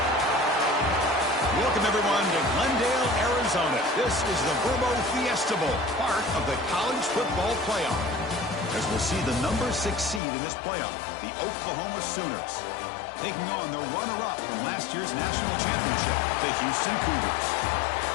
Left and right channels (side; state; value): right; drops out; at 10.2 s